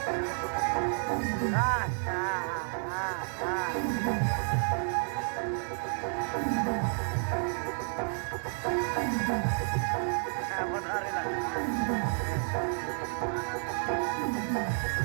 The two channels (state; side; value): silent; left; 56 dB below the other